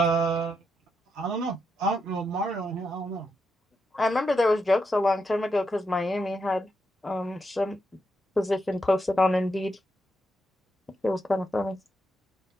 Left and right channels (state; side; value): normal; both; correlation 0.82